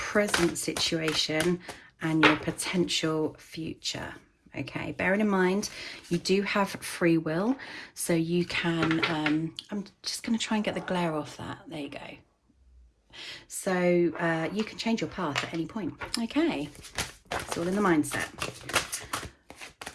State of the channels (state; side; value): identical; both; correlation 1.00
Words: situation, and your potential future. Okay, bearing in mind you do have free will, so you can I'm just going to try and get the glare off that. There you go. So you can change your path at any point. Okay, it's all in the mindset.